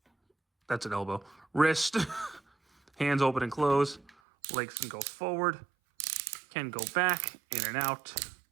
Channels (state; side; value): drops out; left; at 4.1 s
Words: That's an elbow. Wrist. Hands open and close. Legs can go forward. Can go back, in and out.